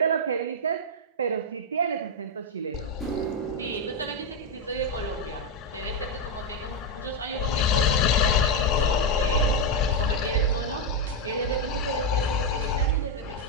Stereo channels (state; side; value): normal; both; correlation 0.02